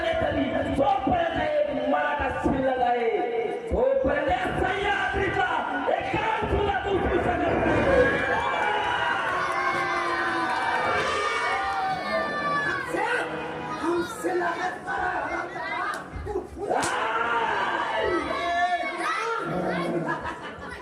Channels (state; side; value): identical; both; correlation 1.00